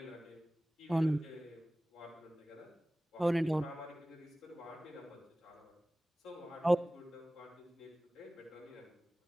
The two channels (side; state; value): both; normal; correlation 0.98